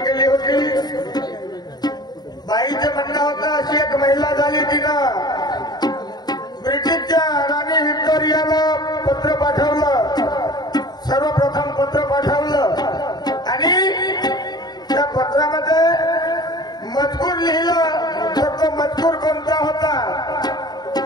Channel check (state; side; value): late; right; 0.20 ms